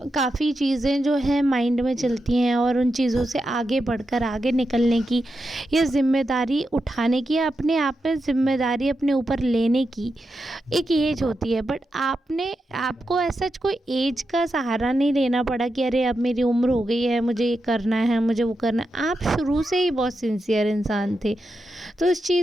काफ़ी चीज़ें जो हैं माइंड में चलती हैं और उन चीज़ों से आगे बढ़कर आगे निकलने की या ज़िम्मेदारी उठाने की या अपने आप में ज़िम्मेदारी अपने ऊपर लेने की एक एज होती है। बट आपको ऐसा कोई एज का सहारा नहीं लेना पड़ा कि अरे अब मेरी उम्र हो गई है, मुझे ये करना है, मुझे वो करना है। आप शुरू से ही बहुत सिंसियर इंसान थे, तो इस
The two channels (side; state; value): both; normal; correlation 0.87